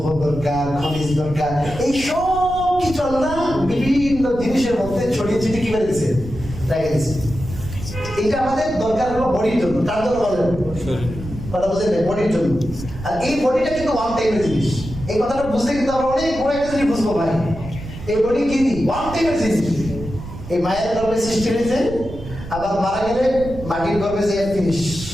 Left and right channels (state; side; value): noise; right; rumble, 11 dB below the sound